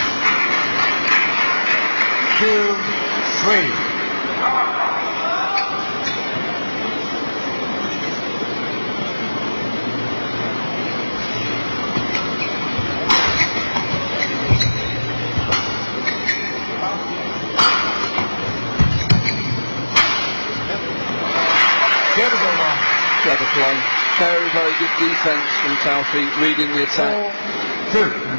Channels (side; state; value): both; inverted; correlation -1.00